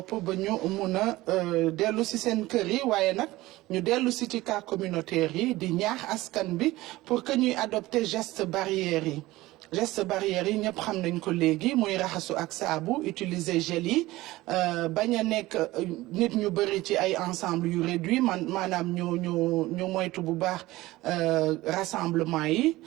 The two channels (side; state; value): left; quieter; 18.4 dB